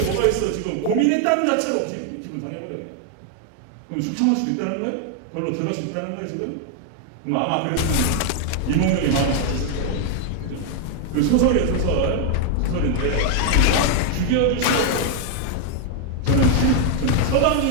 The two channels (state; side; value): different; both; correlation 0.00